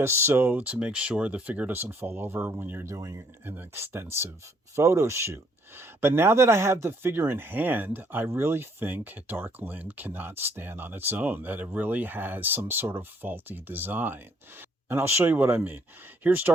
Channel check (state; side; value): normal; both; correlation 0.66